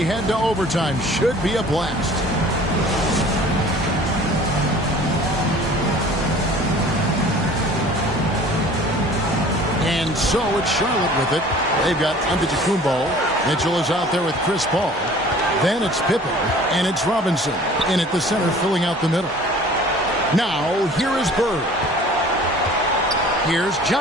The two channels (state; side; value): normal; both; correlation 0.48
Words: head to overtime. Should be a blast. And so it's Charlotte with it. They've got Antetokounmpo. Mitchell is out there with Chris Paul. Then it's Pippen, and it's Robinson in at the center, filling out the middle. Now, here is Bird. Here's